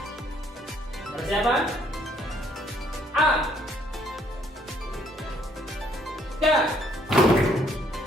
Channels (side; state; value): both; normal; correlation 0.66